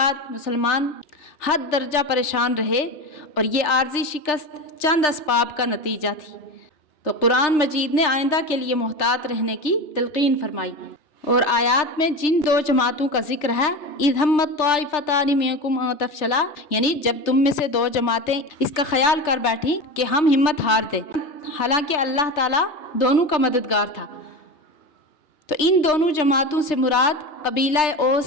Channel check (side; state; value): right; late; 3.3 ms